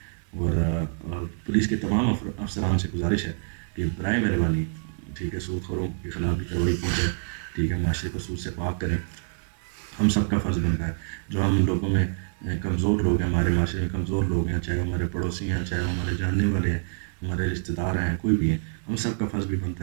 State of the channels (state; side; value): silent; left; digital silence